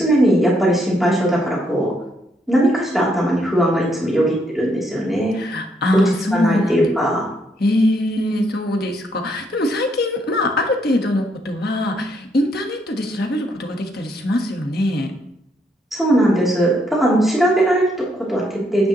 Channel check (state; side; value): normal; both; correlation 0.74